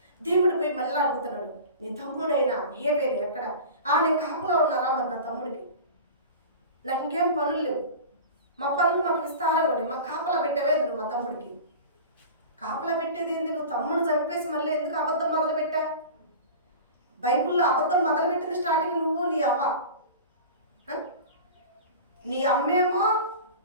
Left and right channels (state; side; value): inverted; both; correlation -0.35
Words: దేవుడు పోయి మళ్ళీ అడుగుతున్నాడు, నీ తమ్ముడైనా హేబేలు ఎక్కడ? నేను కాపులో ఉన్నారా? మరి నా తమ్ముడికి నాకు ఇంకేం పనులు లేవు, మా పనులు మాకు విస్తారంగా ఉన్నాయి, మాకు కాపలా పెట్టేవేంది నువ్వు? మా తమ్ముడికి కాపలా పెట్టేది ఏంది? నువ్వు తమ్ముడిని చంపేసి మళ్ళీ ఎందుకు అబద్ధం మొదలు పెట్టా? బైబిల్లో అబద్ధం మొదలుపెట్టింది స్టార్టింగ్ నువ్వు, నీ అవ్వ. నీ అమ్మేమో